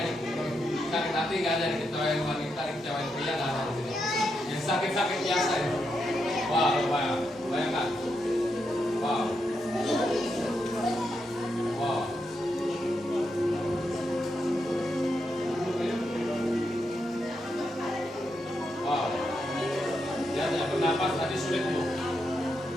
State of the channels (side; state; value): both; normal; correlation 0.83